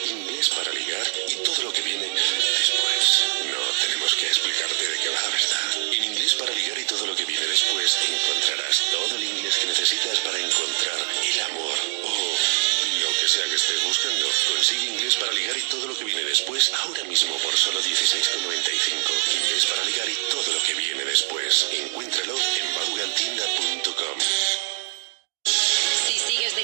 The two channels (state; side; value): silent; left; digital silence